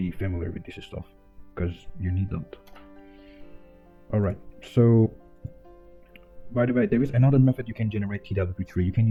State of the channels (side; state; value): both; identical; correlation 1.00